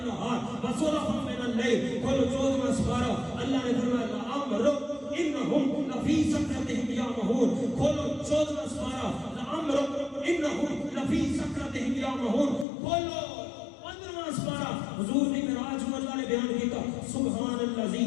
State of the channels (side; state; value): right; drops out; at 12.7 s